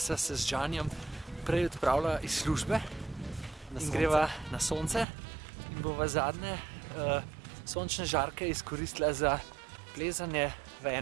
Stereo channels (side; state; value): left; drops out; at 5.1 s